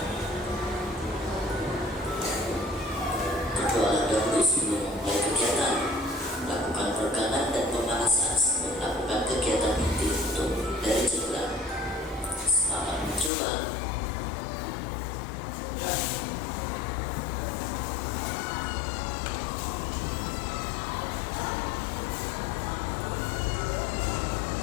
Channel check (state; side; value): drops out; right; at 13.3 s